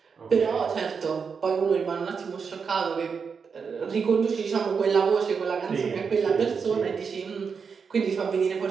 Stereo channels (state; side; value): quieter; left; 5.8 dB